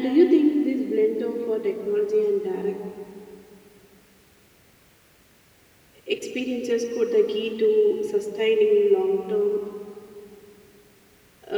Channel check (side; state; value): both; identical; correlation 1.00